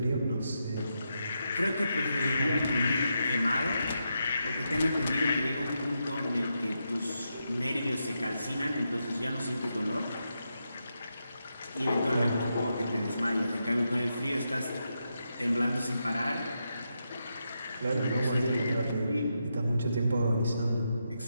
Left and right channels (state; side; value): inverted; both; correlation -0.85